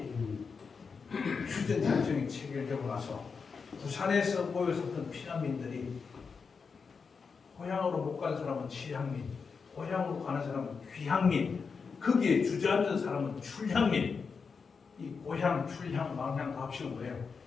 휴전작전이 체결되고 나서 부산에서 모여섰던 피난민들이 고향으로 못 간 사람은 취향민, 고향으로 가는 사람은 귀향민, 거기에 주저앉은 사람은 출향민. 이 고향, 출향, 망향 다 합치면 뭐예요?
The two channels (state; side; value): quieter; right; 5.3 dB